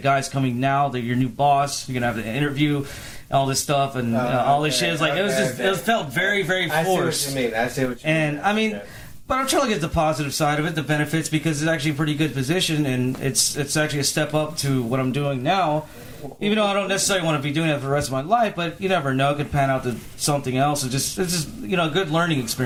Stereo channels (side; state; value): both; identical; correlation 1.00